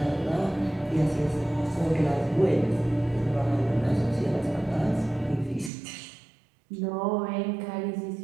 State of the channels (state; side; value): drops out; left; at 5.7 s